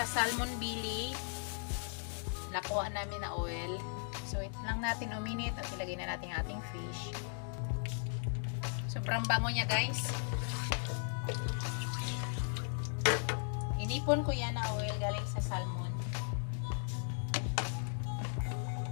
salmon belly. Nakuha namin na oil. So, ito lang natin uminit at ilagay na natin ating fish. Sobrang bango niya guys. Inipon ko yan na oil galing sa salmon.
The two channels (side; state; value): right; silent; 53 dB below the other